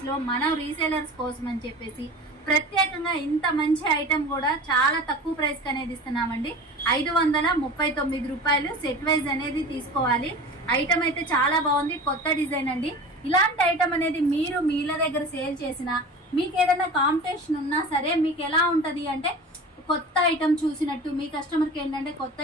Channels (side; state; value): both; normal; correlation 0.36